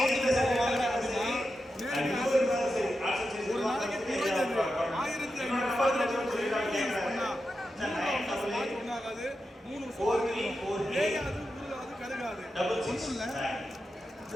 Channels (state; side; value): normal; both; correlation 0.89